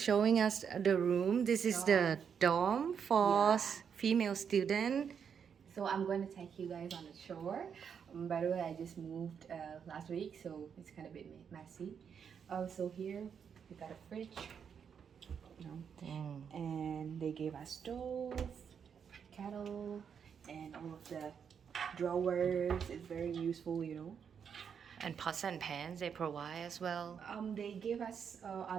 us the room. This is the dorm for female student. So I'm going to take you guys on a tour. By the way, I just moved last week, so it's kind of a bit messy. So here we got a fridge, and they gave us stove, kettle, and all of the drawers. It's very useful. And pots and pans they provide as well. They gave us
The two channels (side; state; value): left; quieter; 7.2 dB